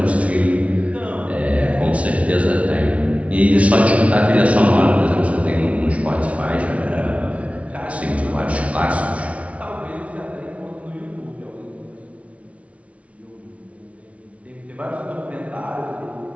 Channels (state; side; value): late; left; 0.064 ms